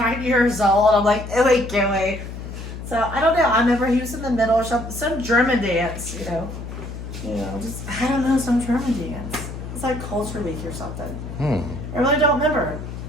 years old. I'm like, ewy gooey. So I don't know. I remember he was in the middle of some German dance, you know, just I don't know, some German dance. It's like Culture Week or something. I really don't remember.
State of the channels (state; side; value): noise; left; hum, 9 dB below the sound